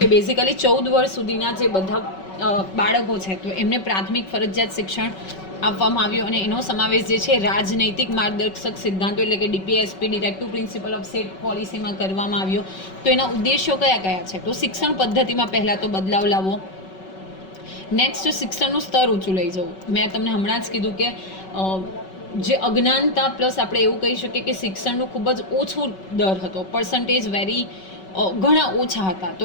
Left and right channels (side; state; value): right; late; 5.3 ms